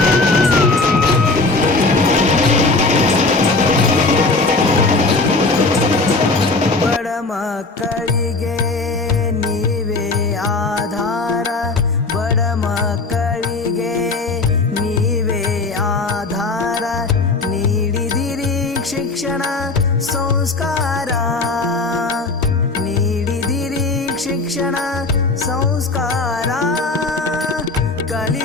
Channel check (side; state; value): right; quieter; 3.5 dB